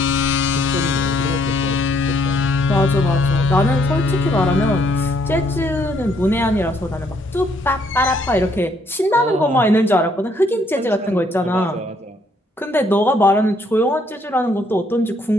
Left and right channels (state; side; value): normal; both; correlation 0.68